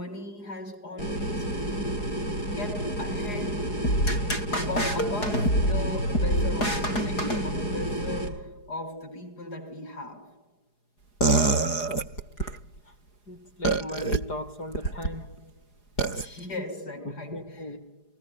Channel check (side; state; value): right; late; 4.8 ms